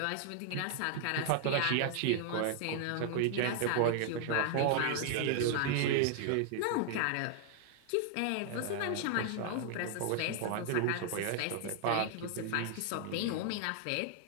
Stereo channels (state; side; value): different; both; correlation 0.00